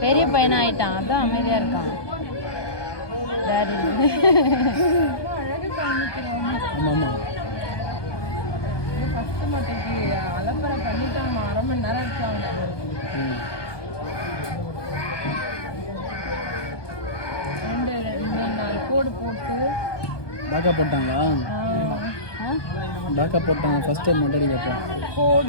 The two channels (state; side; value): late; right; 1.2 ms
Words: பெரிய பையனா ஆயிட்டான், அதான் அமைதியா இருக்கான். அலம்பரை பண்ணிட்டு நம்ம 1/2 மணி நேரம் இருக்காங்க. ரெண்டு 4 கோடு போட்டு டாக்கா போட்டாங்களா? டாக்கா போட்டாங்க. ஃபர்ஸ்ட் டைம் மொட்டடி கேட்டேன்.